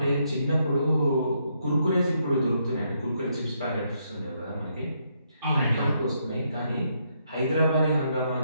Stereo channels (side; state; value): both; inverted; correlation -0.76